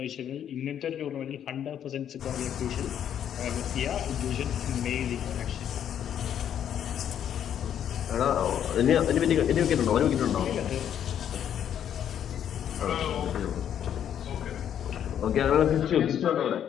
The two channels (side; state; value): right; quieter; 9.6 dB